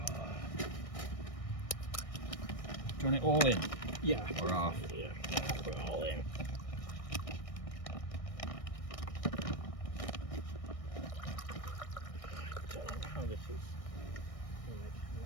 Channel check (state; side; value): late; right; 1.6 ms